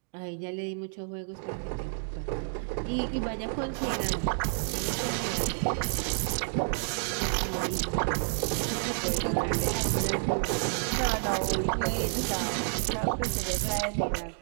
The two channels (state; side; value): silent; left; digital silence